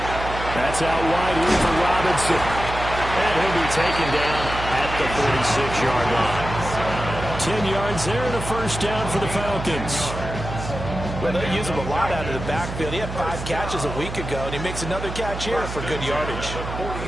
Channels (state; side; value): noise; right; hum, 7 dB below the sound